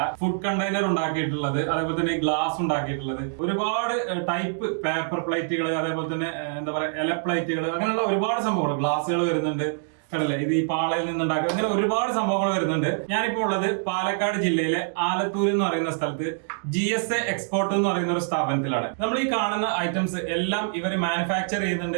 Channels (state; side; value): silent; left; digital silence